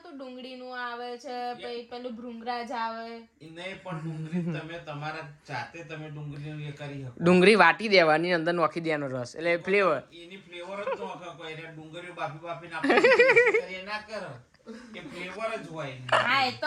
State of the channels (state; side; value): identical; both; correlation 1.00